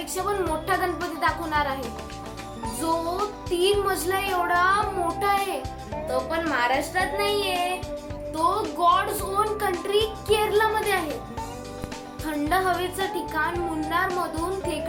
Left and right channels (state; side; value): identical; both; correlation 1.00